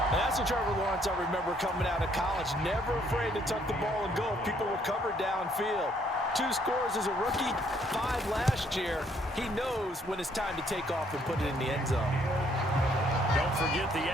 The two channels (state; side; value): normal; both; correlation 0.67